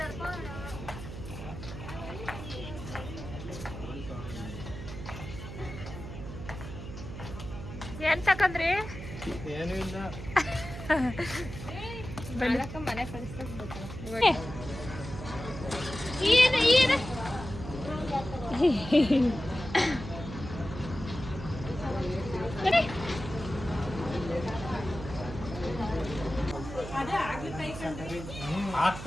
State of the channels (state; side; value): noise; right; hum, 10 dB below the sound